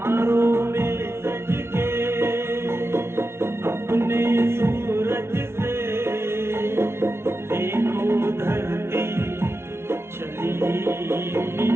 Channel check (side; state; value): left; late; 0.12 ms